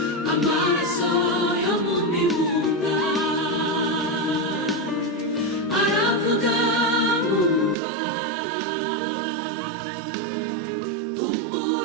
amaraso yo mu mibunda aravuga nkumva.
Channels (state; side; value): drops out; left; at 7.8 s